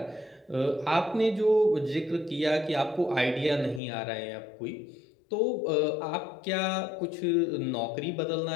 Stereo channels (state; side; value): drops out; right; at 3.8 s